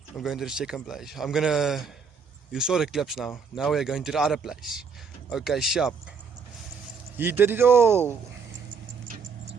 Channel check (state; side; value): quieter; left; 5.6 dB